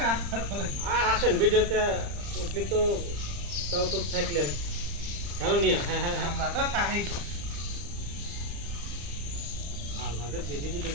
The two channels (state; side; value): late; left; 35 ms